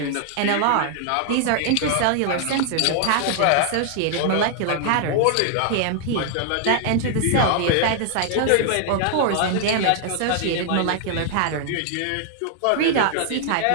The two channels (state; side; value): different; both; correlation 0.00